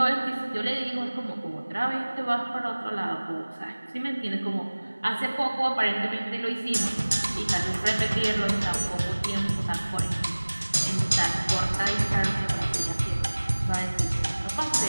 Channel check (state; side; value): inverted; both; correlation -1.00